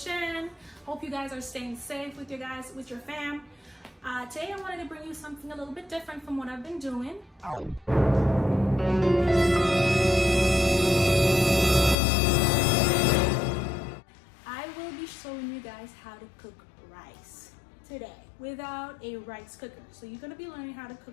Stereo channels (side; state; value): right; drops out; at 12.0 s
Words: Hope you guys are staying safe with your fam. Today I wanted to bring you something a little bit different from what I've been doing. I will be showing you guys how to cook rice today without a rice cooker. So you're going to be learning how to